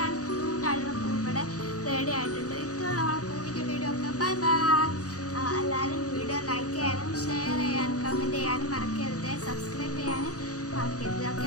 ആൻഡ് ക്യൂട്ട് ആയിട്ടുള്ള പൂ ഇവിടെ റെഡി ആയിട്ടുണ്ട്. ഇത്രയുള്ള നമ്മളെ പൂവിൻ്റെ വീഡിയോ ഒക്കെ. Bye bye. എല്ലാവരും വീഡിയോ ലൈക്ക് ചെയ്യാനും ഷെയർ ചെയ്യാനും കമൻറ്റ് ചെയ്യാനും മറക്കരുത്, സബ്സ്ക്രൈബ് ചെയ്യാനും മറക്കരുത്.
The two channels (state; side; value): late; right; 0.67 ms